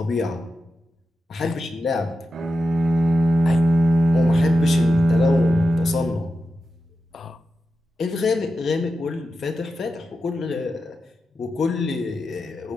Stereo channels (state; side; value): normal; both; correlation 0.90